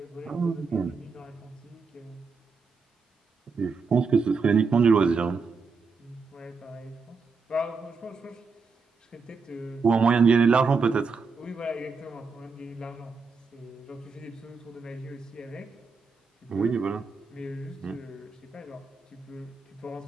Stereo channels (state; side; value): quieter; left; 4.7 dB